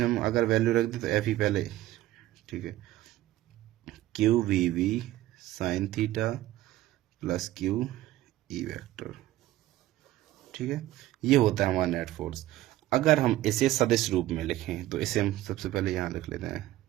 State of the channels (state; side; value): quieter; left; 15.2 dB